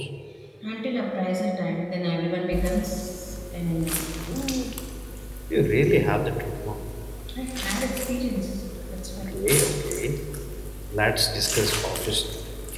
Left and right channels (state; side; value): identical; both; correlation 1.00